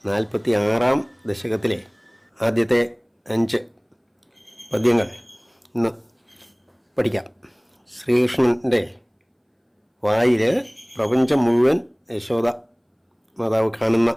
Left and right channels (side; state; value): both; identical; correlation 1.00